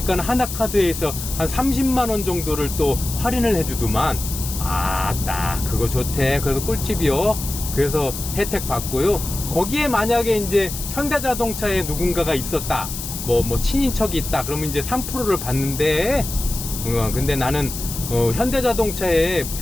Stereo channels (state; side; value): noise; left; hiss, 8 dB below the sound